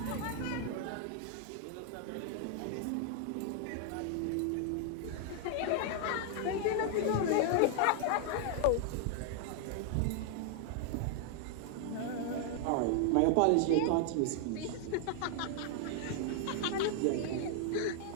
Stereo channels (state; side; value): different; both; correlation 0.00